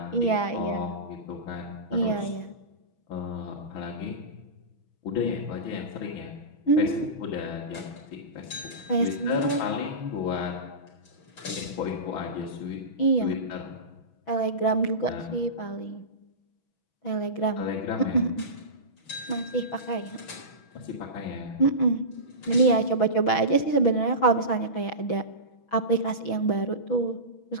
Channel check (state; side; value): late; right; 6.2 ms